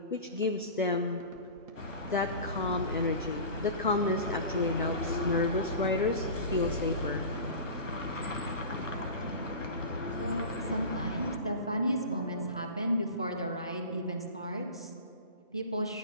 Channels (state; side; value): inverted; both; correlation -0.33